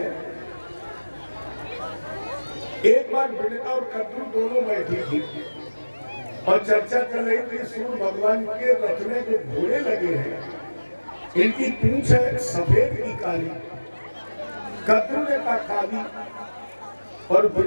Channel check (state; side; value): inverted; both; correlation -1.00